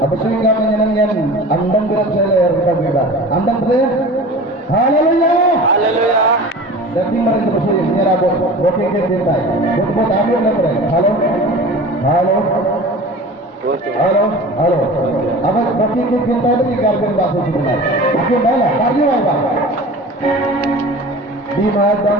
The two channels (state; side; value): normal; both; correlation 0.38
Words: sehingga menyenang yang andang berat saya kita bebas andang berat haleluya Haleluya. Jadi mereka bersih nyerah booking ke cintai buat ambil lembre halo apa booking ke cintai itu ikan bahasa sebenarnya aku malah karya apa di